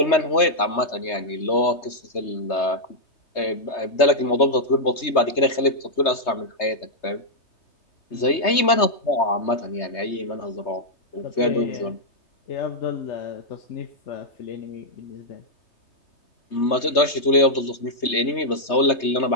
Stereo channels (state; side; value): late; right; 3.2 ms